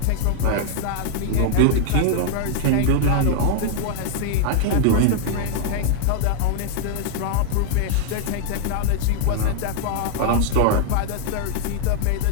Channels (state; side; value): different; both; correlation 0.00